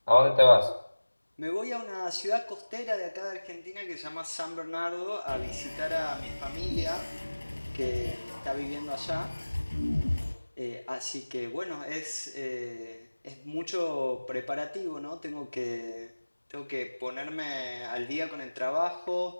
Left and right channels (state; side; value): inverted; both; correlation -1.00